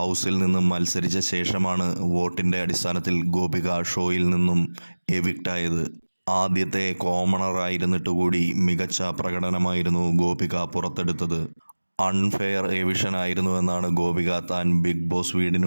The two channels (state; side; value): inverted; both; correlation -1.00